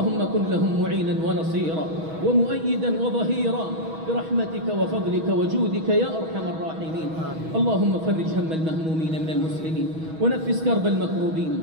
كن لهم معينا ونصيرا ومؤيدا وظهيرا برحمتك وفضلك وجودك يا أرحم الراحمين. اللهم فرج هم المهمومين من المسلمين ونفس كرب المكروبين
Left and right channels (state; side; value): late; left; 6.2 ms